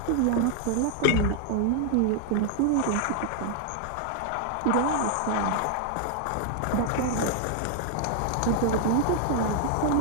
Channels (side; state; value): both; different; correlation 0.00